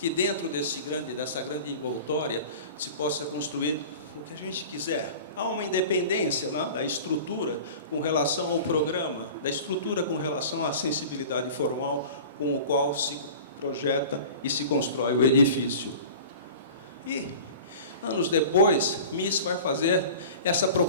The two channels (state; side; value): inverted; both; correlation -0.39